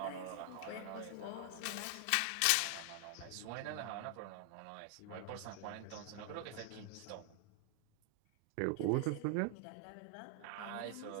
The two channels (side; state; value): both; different; correlation 0.00